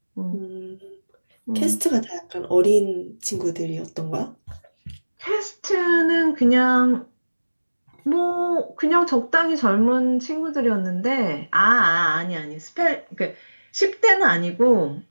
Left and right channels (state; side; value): inverted; both; correlation -1.00